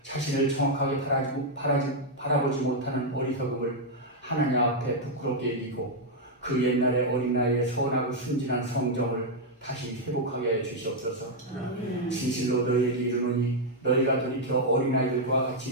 자신을 정확하게 바라보지 못하는 어리석음을 하나님 앞에 부끄럽게 여기고 그 옛날의 어린아이의 선하고 순진한 성정을 다시 회복하게 하여 주시옵소서. 진실로 너희에게 이르노니 너희가 돌이켜 어린아이들과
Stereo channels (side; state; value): both; normal; correlation -0.01